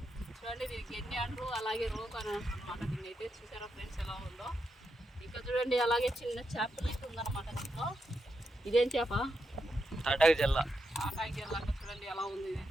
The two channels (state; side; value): normal; both; correlation 0.84